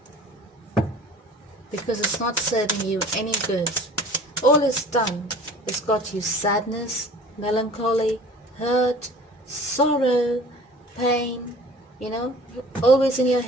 Because it's not serving you any good. All it's done is got you sadness, melancholy, hurt, sorrow, pain, always in your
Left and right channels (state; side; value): normal; both; correlation 0.46